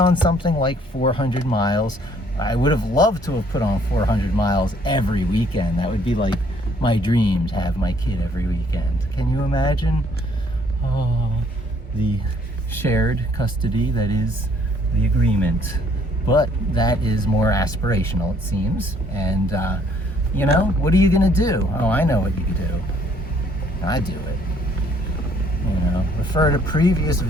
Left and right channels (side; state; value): both; normal; correlation 0.63